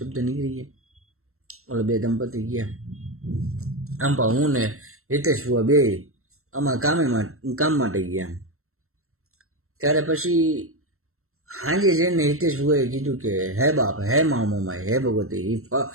નીકળી ગયા. ઓલા બે દંપતી ગયા. આમ પા હું ને હિતેશ ભુવા બે આમાં કામ માટે ગયા. ત્યારે પછી હાંજે જઈને હિતેશ ભુવાએ કીધું કે હે બાપ, હે મા મોમાઈ, હે ભગવતી. એ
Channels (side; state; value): left; late; 0.63 ms